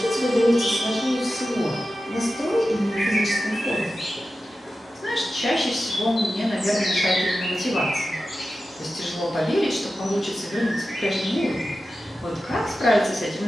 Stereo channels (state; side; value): normal; both; correlation 0.93